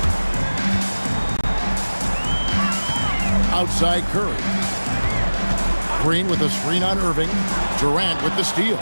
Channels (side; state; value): both; inverted; correlation -1.00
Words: Outside Curry. Green with a screen on Irving. Durant with the steal.